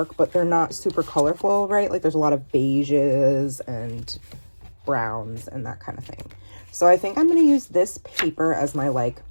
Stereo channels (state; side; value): inverted; both; correlation -1.00